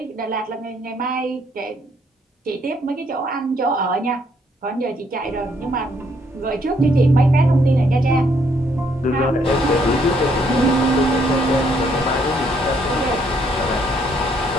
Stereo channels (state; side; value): normal; both; correlation 0.69